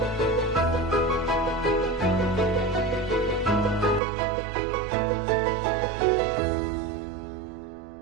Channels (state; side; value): drops out; left; at 4.0 s